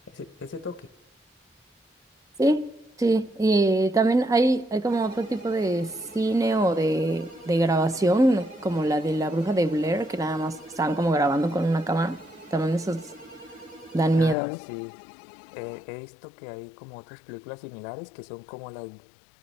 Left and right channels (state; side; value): drops out; right; at 14.4 s